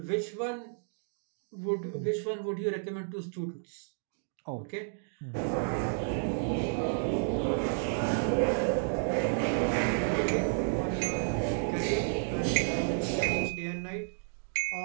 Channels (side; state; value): left; silent; digital silence